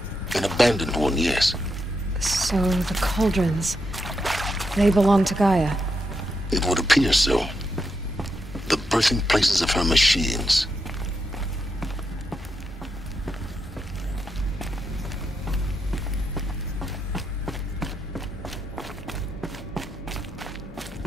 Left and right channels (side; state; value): both; normal; correlation 0.83